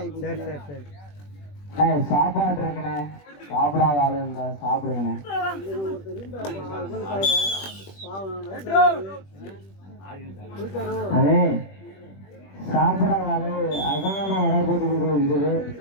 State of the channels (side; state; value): right; late; 21 ms